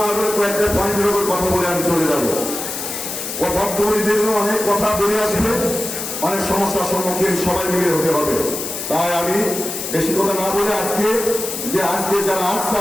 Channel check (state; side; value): noise; left; hiss, 6 dB below the sound